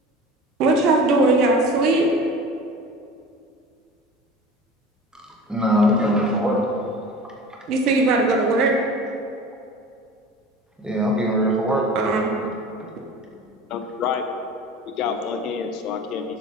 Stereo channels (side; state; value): both; normal; correlation 0.38